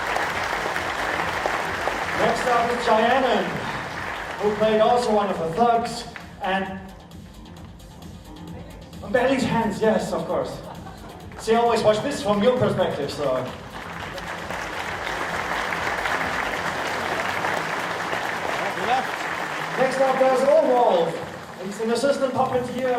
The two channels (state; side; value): identical; both; correlation 1.00